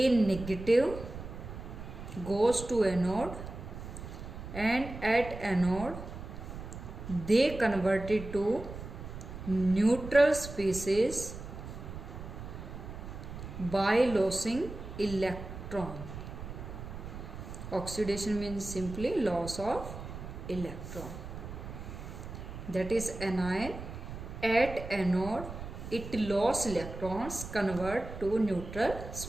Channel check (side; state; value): right; noise; rumble, 10 dB below the sound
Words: negative goes to anode, and at anode they convert it to neutral species by losing electron. Oxidation means simply loss of electron. That is anion. At anode, it lost electrons, convert to neutral